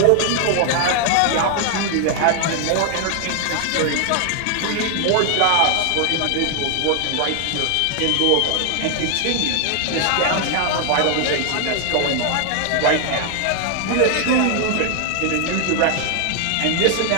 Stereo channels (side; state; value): both; different; correlation 0.00